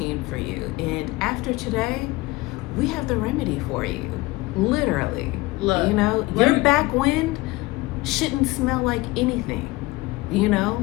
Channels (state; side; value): quieter; right; 21.2 dB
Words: for you. And after today, we have the remedy for you. Literally. Look, your back wind shouldn't smell like anything,